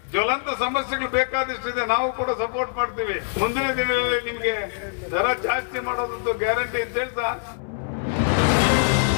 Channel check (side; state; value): right; silent; 62 dB below the other